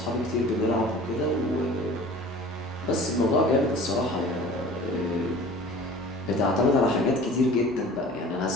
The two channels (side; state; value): both; normal; correlation 0.43